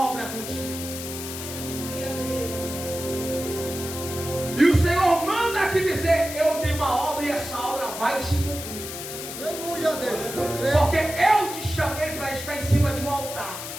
contigo. E o Senhor manda te dizer: eu tenho uma obra e essa obra vai se cumprir. Aleluia, Deus.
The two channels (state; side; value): noise; left; hiss, 8 dB below the sound